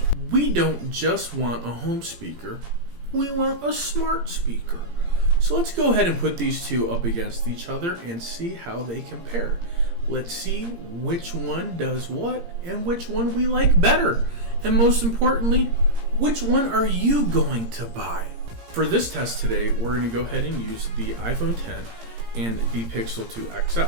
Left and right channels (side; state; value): left; late; 17 ms